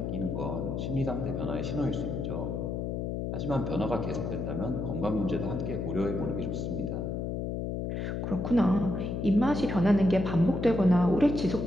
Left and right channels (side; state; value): left; noise; hum, 2 dB below the sound